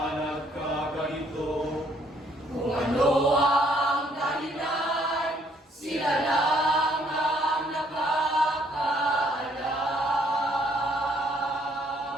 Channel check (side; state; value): both; normal; correlation 0.66